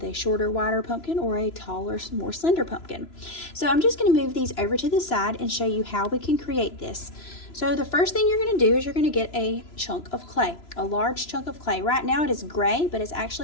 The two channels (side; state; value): right; late; 3.0 ms